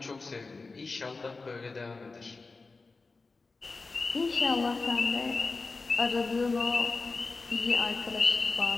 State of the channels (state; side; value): quieter; right; 3.9 dB